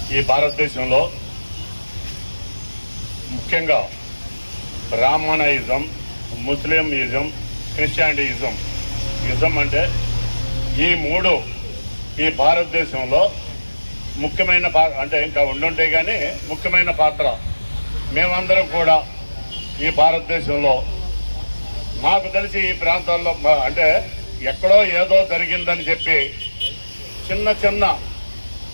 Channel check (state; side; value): inverted; both; correlation -1.00